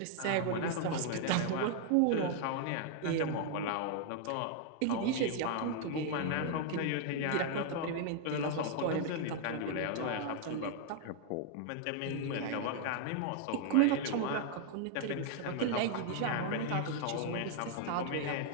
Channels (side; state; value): both; different; correlation 0.00